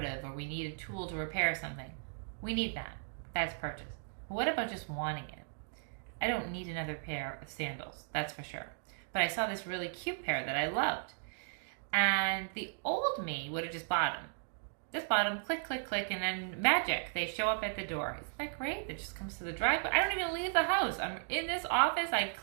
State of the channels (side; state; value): left; silent; digital silence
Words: of, or we need a tool to repair something, we need that. That's purchase. But what about just wanting it? I don't need another pair of sandals, that's for sure. But I saw this really cute pair that I loved. And the old me would have just bought them. Just bought them, click, click, click, and then magic, they show up at the door. Isn't that great? It just comes to the driveway. I don't even leave the house. I'm in this office, I